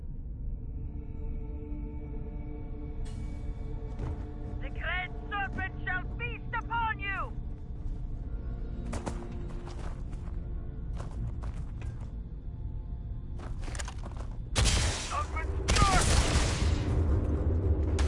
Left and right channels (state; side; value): identical; both; correlation 1.00